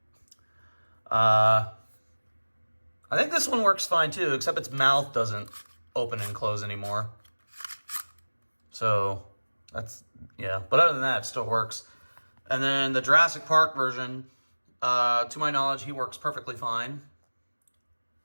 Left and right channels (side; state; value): both; inverted; correlation -1.00